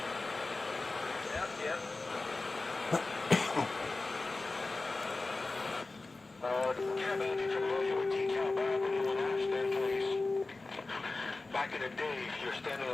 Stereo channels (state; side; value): quieter; right; 3.4 dB